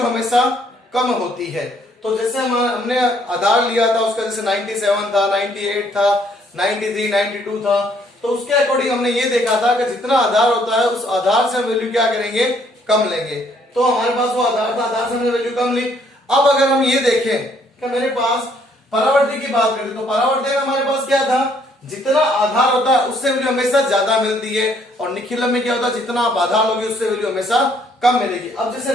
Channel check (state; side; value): normal; both; correlation 0.66